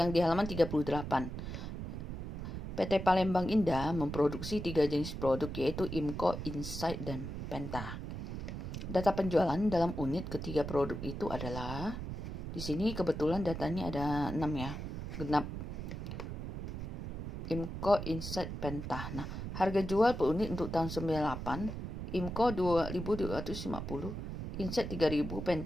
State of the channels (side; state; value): right; noise; rumble, 6 dB below the sound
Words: 38. PT Palembang Indah memproduksi 3 jenis produk yaitu IMCO, Insight, dan Penta. Data penjualan dalam unit ketiga produk itu adalah di sini kebetulan datanya ada 6 ya. Genap. IMCO, Insight, Penta. Nah, harga jual per unit untuk tahun 98, IMCO 2.250, Insight 3.000,